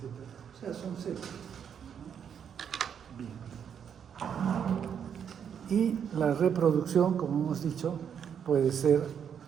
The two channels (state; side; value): quieter; left; 8.0 dB